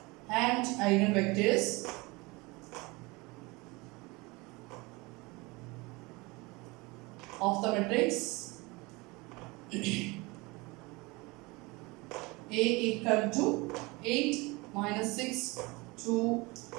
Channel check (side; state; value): left; quieter; 24.6 dB